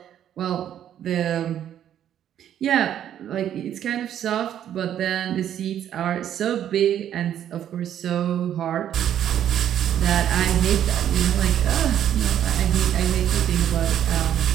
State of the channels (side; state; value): left; quieter; 10.4 dB